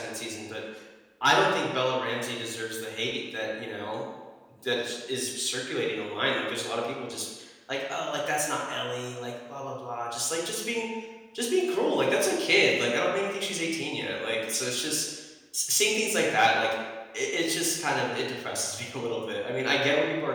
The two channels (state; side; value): identical; both; correlation 1.00